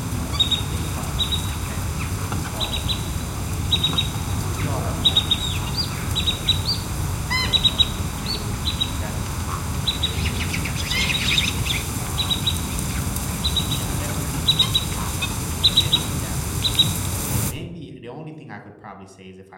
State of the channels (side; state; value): both; identical; correlation 1.00